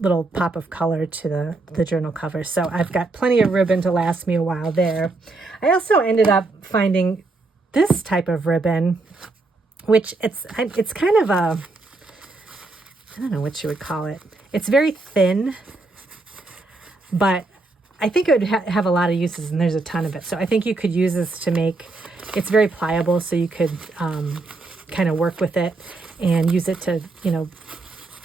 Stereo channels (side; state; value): left; quieter; 3.3 dB